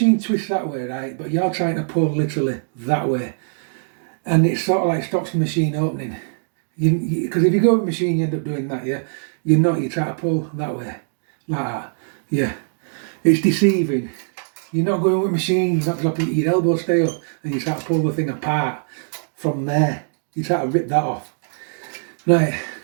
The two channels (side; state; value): left; silent; digital silence